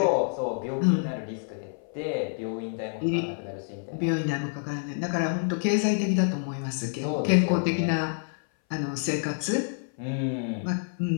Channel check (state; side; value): silent; right; 58 dB below the other